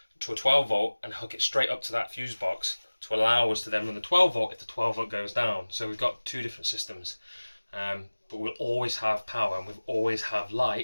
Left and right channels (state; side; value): inverted; both; correlation -1.00